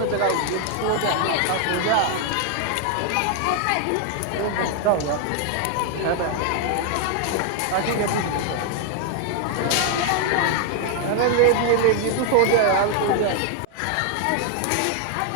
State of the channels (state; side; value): different; both; correlation 0.00